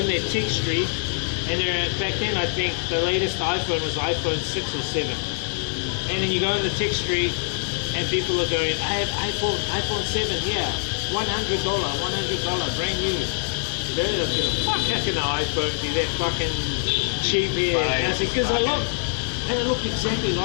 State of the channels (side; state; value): right; silent; 63 dB below the other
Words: in that Tech Street, and there, back then I think the latest iPhone was iPhone 6 or 7. And then you go in the Tech Street, and people are going, I have iPhone 7 here, $100, brand new. They're looking, fuck, how can an iPhone be that fucking cheap here? And I said, because I look, and it looked exactly